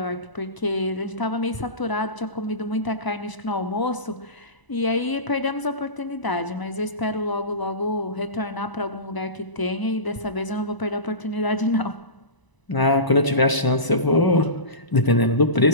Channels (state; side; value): late; right; 1.0 ms